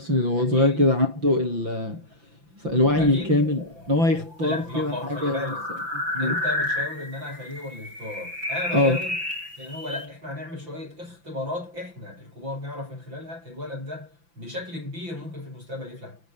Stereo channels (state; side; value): late; left; 5.9 ms